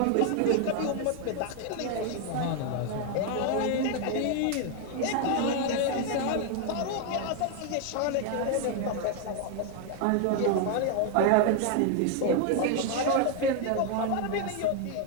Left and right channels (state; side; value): different; both; correlation 0.01